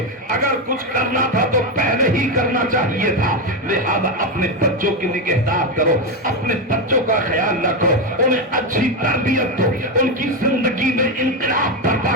اگر کچھ کرنا تھا تو پہلے ہی کرنا چاہیے تھا۔ لہذا اپنے بچوں کی نگہداشت کرو، اپنے بچوں کا خیال رکھو، انہیں اچھی تربیت دو، ان کی زندگی میں انقلاب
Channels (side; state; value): both; normal; correlation 0.10